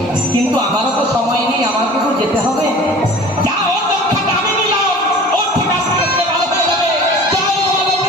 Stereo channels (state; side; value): normal; both; correlation 0.43